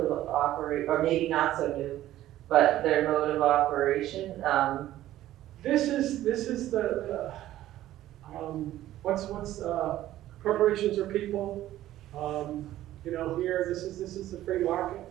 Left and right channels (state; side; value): quieter; left; 13.9 dB